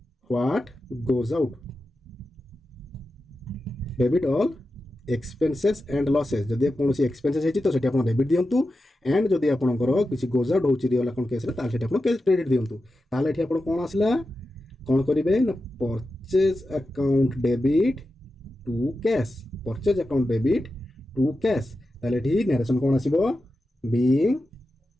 what goes out debit all expenses and losses जदि कौन एक्सपेंसेस है तो सेठी आपण डेबिट दियंतु एंड जदि आपणकर किसी गोज आउट होची रियल अकाउंट केस रे ताले सेठी आपण क्रेडिट दियंतु। ताले एठी आपण कोन आसला कौन करिवे ना purchase account debit to cash purchase account debit to cash ताले एठी नरेशन कोन आसीबो बीइंग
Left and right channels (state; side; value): normal; both; correlation 0.91